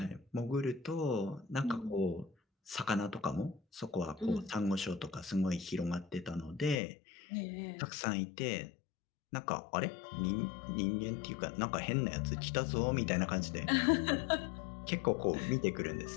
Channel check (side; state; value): right; drops out; at 6.8 s